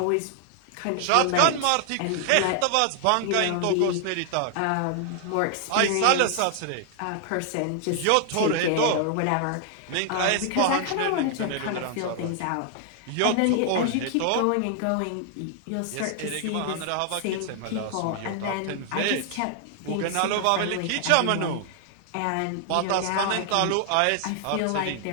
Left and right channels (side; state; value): both; different; correlation 0.00